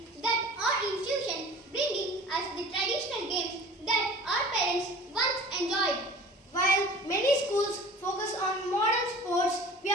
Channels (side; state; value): both; normal; correlation 0.43